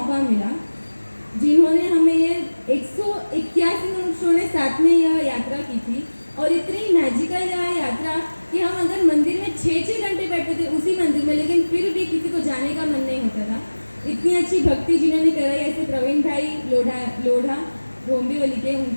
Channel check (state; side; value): inverted; both; correlation -1.00